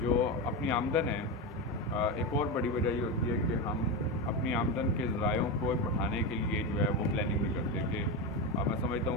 जो अपनी आमदन है, एक और बड़ी वजह ये होती है कि हम अपनी आमदन के ज़रायों को बढ़ाने के लिए जो है वो प्लानिंग नहीं करते कि मैं समझता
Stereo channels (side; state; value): both; normal; correlation 0.15